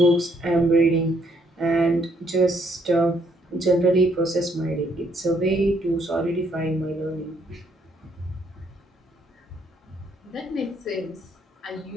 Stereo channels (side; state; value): both; normal; correlation 0.69